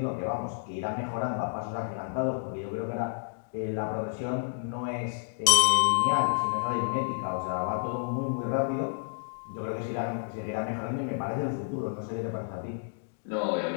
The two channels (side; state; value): right; silent; digital silence